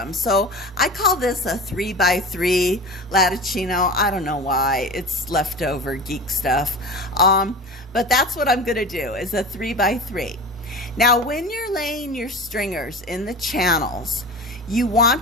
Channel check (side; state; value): both; normal; correlation 0.31